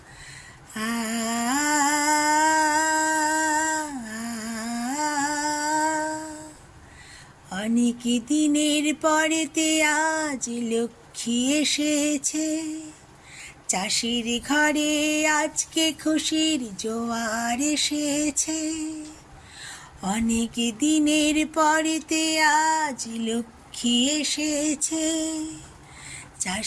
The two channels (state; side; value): identical; both; correlation 1.00